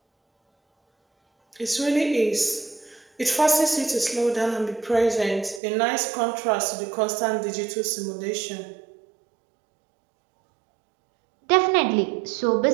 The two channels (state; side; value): drops out; left; at 5.6 s